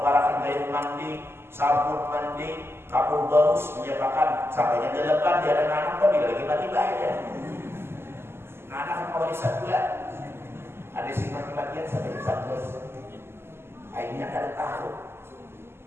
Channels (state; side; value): late; left; 0.12 ms